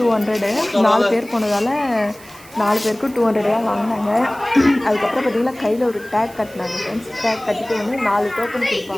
4 பேர் போனதால் 4 பேருக்கும் 200 தான் வாங்கினாங்க. அதுக்கப்புறம் பார்த்தீங்கன்னா கையில் ஒரு டேக் கட்டினாங்க ஃப்ரெண்ட்ஸ். டேக் கட்டிட்டு வந்து 4 டோக்கன்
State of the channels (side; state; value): right; noise; hiss, 22 dB below the sound